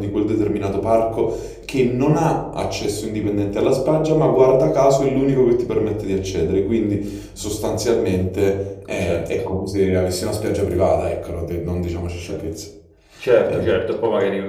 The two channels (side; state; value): both; identical; correlation 1.00